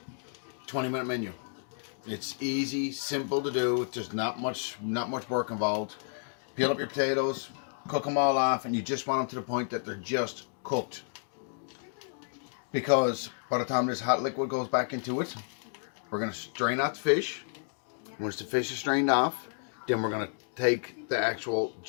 20-minute menu. It's easy, simple to do. There's not much work involved. Peel up your potatoes, cook them all off, and you just want them to the point that they're just cooked. Because by the time this hot liquid goes back into it, we're going to strain out the fish. Once the fish is strained off, then we're going to take the actual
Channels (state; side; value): silent; right; digital silence